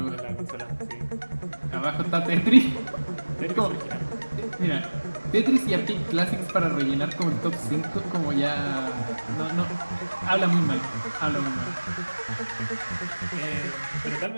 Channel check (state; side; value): inverted; both; correlation -1.00